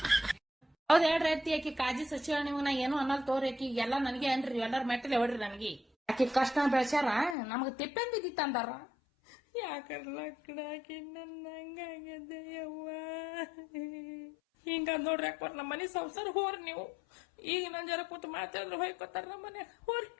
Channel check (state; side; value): drops out; right; at 7.4 s